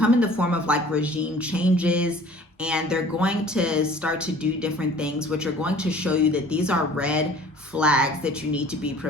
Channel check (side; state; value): both; normal; correlation 0.49